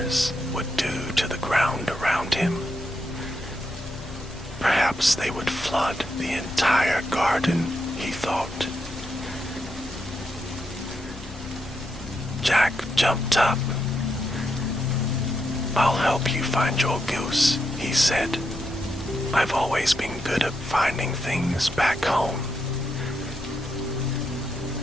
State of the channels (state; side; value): noise; left; rumble, 15 dB below the sound